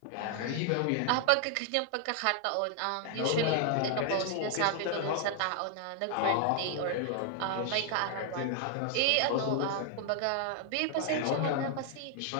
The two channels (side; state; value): both; different; correlation 0.00